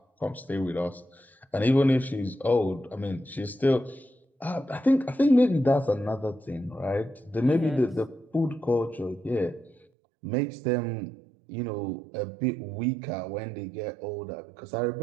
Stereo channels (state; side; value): drops out; left; at 9.9 s